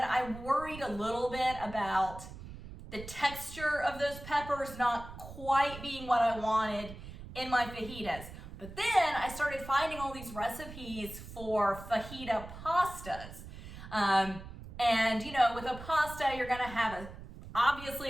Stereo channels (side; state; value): right; noise; rumble, 13 dB below the sound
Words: worried a little bit about the texture of those peppers not quite being what I wanted in my fajitas. But then I started finding all these recipes for fajita pastas. And you know, with a pasta, you're gonna have